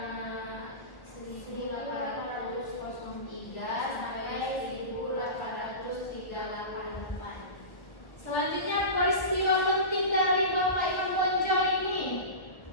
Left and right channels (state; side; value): late; right; 1.2 ms